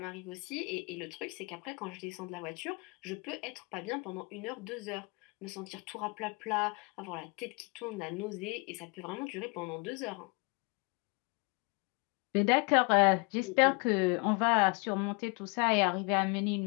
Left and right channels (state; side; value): quieter; right; 31.6 dB